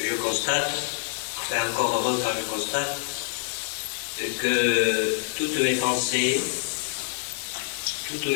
constate, enfin encore heureux quand je constate, que toutes mes pensées, toutes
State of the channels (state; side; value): silent; right; digital silence